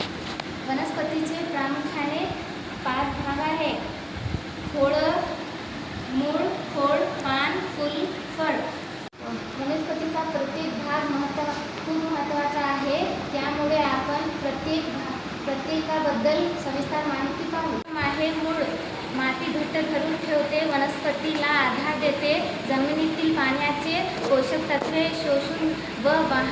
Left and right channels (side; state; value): both; identical; correlation 1.00